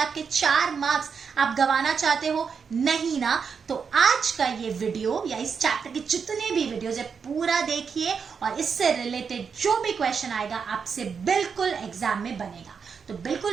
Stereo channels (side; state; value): left; quieter; 6.1 dB